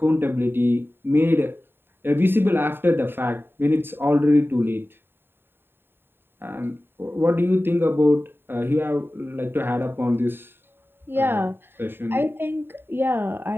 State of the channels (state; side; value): late; left; 0.11 ms